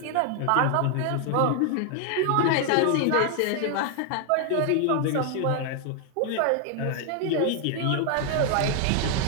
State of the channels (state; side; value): different; both; correlation 0.00